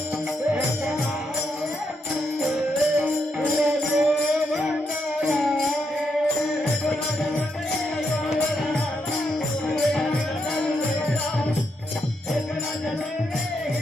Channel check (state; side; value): normal; both; correlation 0.80